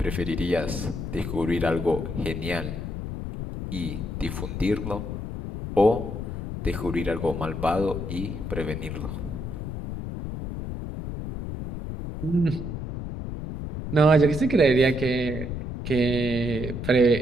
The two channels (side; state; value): left; noise; rumble, 6 dB below the sound